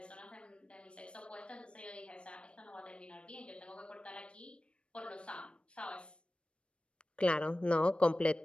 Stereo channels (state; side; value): late; right; 0.058 ms